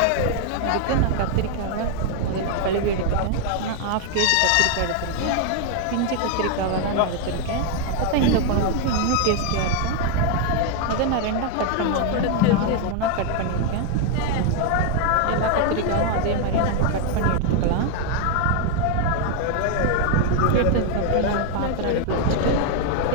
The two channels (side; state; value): both; different; correlation 0.00